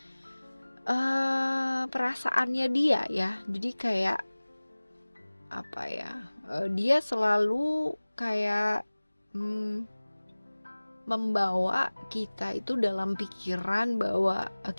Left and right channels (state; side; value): inverted; both; correlation -1.00